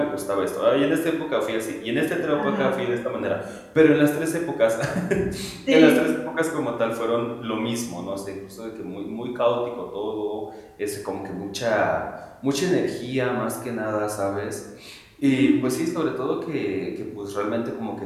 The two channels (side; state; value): both; identical; correlation 1.00